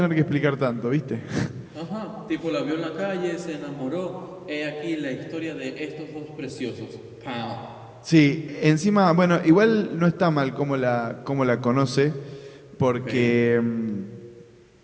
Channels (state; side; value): identical; both; correlation 1.00